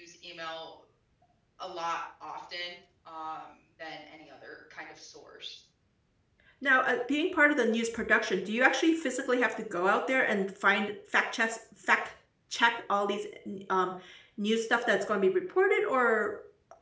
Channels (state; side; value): identical; both; correlation 1.00